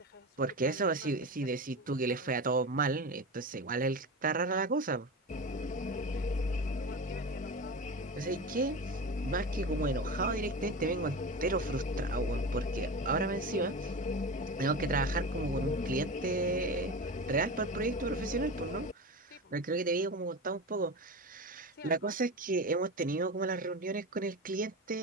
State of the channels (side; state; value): both; normal; correlation 0.26